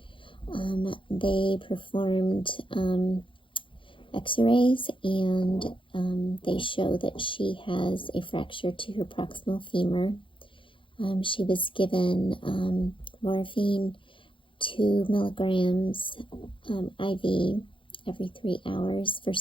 They performed x-rays and they show that she has a fracture to her proximal femur. She was given morphine 2 milligrams IV every 3 hours for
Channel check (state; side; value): late; right; 0.25 ms